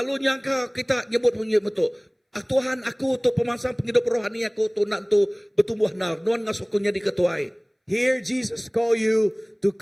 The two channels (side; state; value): both; identical; correlation 1.00